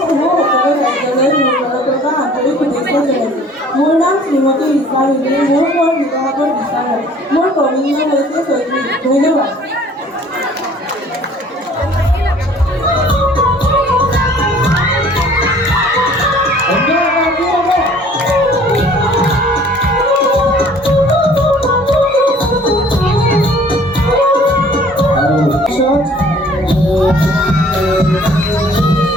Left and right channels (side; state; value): both; normal; correlation 0.53